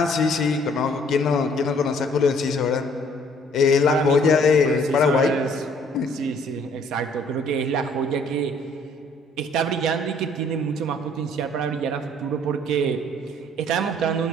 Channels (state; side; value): normal; both; correlation 0.60